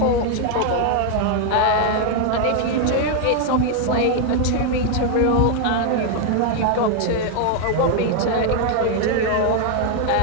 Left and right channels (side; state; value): both; different; correlation 0.00